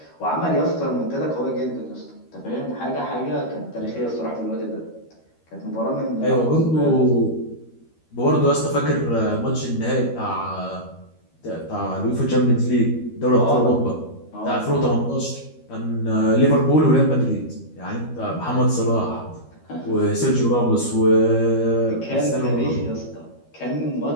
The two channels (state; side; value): late; right; 13 ms